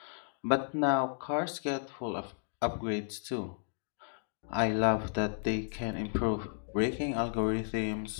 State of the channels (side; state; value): right; silent; digital silence